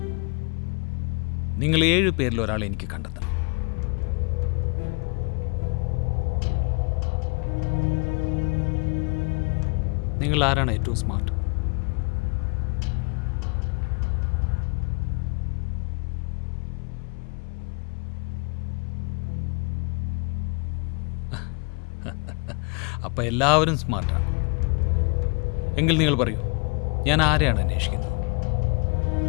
നിങ്ങൾ 7 പേരിൽ ഒരാളെ എനിക്ക് കണ്ടെത്തണം. നിങ്ങൾ ആരാണ് ഏറ്റവും സ്മാർട്ട്? അപ്പം എല്ലാവരും സ്മാർട്ടാണ്. എങ്കിൽ നിങ്ങൾ പറയൂ, ഞാൻ ആരെയാണ് അന്വേഷിക്കുന്നത്?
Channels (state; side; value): quieter; right; 33.5 dB